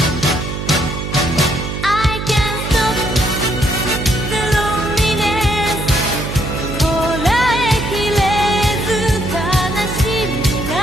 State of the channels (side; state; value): right; noise; hum, 5 dB below the sound